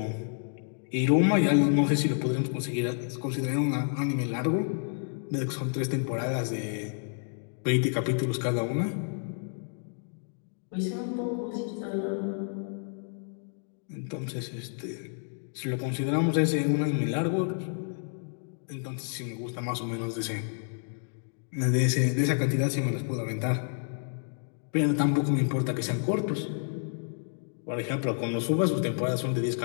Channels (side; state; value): right; silent; 58 dB below the other